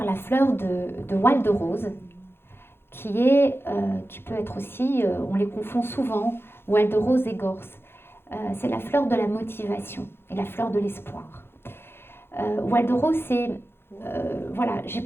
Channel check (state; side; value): late; right; 0.11 ms